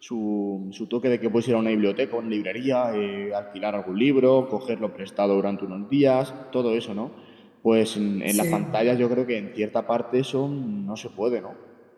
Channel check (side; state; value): both; identical; correlation 1.00